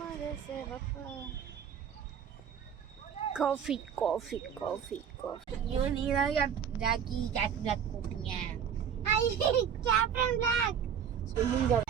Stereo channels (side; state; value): left; quieter; 8.0 dB